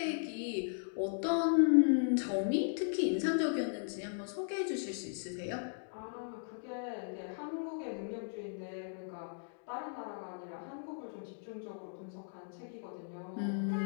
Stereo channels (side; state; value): right; silent; digital silence